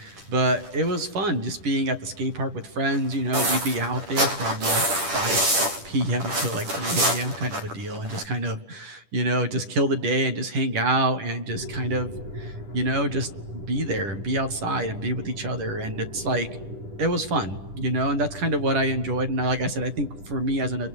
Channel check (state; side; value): late; left; 10 ms